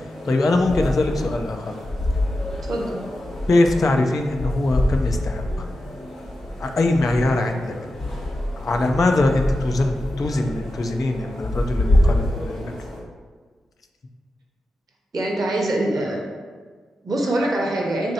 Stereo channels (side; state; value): both; normal; correlation 0.91